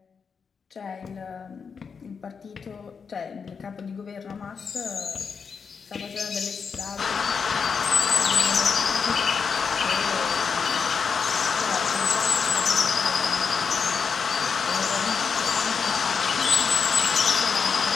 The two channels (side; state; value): right; quieter; 5.9 dB